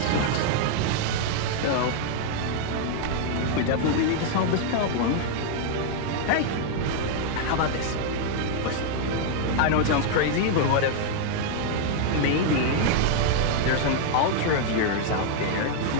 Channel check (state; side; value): different; both; correlation 0.00